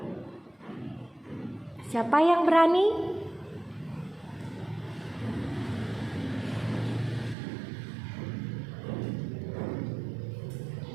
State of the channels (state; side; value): drops out; left; at 7.4 s